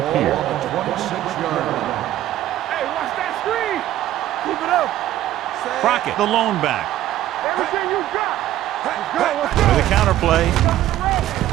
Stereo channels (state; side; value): quieter; left; 13.5 dB